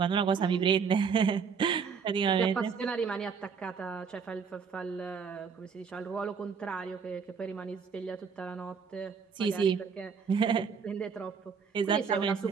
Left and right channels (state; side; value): quieter; left; 6.1 dB